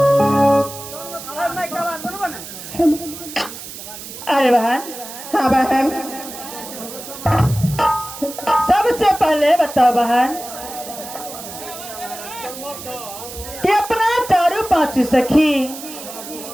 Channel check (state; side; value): noise; right; hiss, 12 dB below the sound